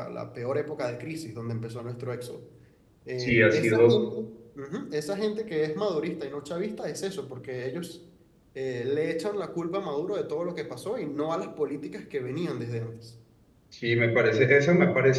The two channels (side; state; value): both; identical; correlation 1.00